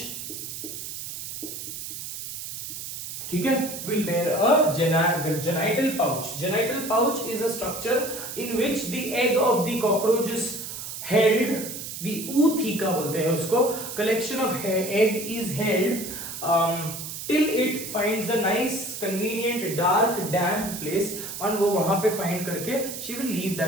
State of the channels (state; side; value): noise; right; hiss, 8 dB below the sound